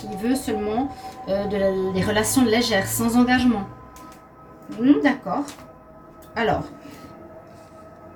veut seulement des relations légères, sans engagement. D'accord. Alors,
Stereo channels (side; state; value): both; identical; correlation 1.00